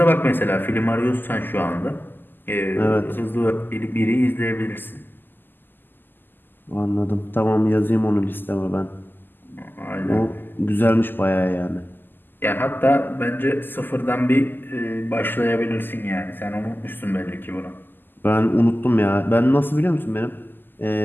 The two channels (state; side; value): late; right; 0.092 ms